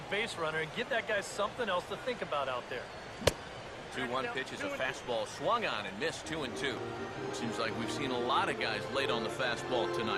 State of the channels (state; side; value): identical; both; correlation 1.00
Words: base runner and give that guy something else to think about out there. 2-1 pitch is a fastball swung on and missed. 2-2. Seems like we've seen a lot of guys late on the fastball